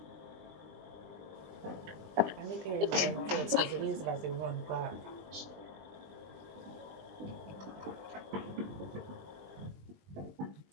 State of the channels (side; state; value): left; late; 20 ms